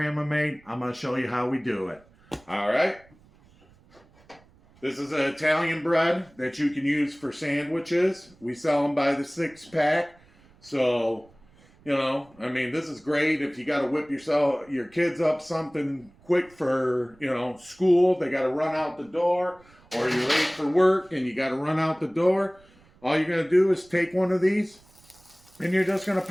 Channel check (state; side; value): noise; right; rumble, 29 dB below the sound